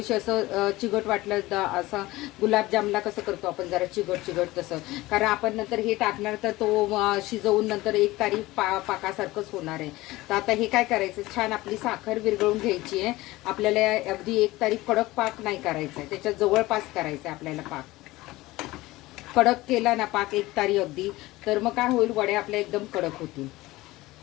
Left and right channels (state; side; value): quieter; right; 18.9 dB